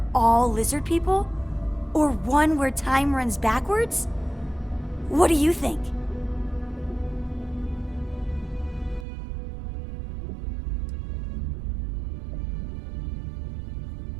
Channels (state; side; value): drops out; left; at 9.1 s